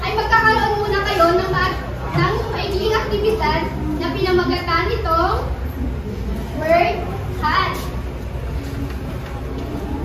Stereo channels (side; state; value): both; identical; correlation 1.00